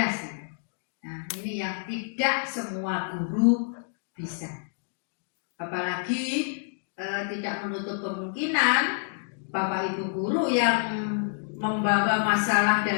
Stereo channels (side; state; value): right; silent; digital silence